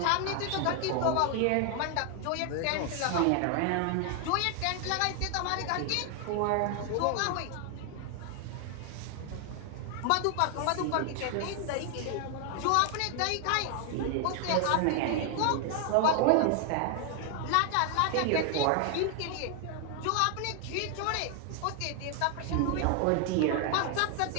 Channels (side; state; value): both; different; correlation 0.00